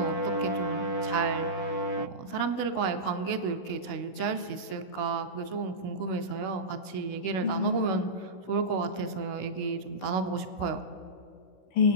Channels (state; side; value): late; right; 16 ms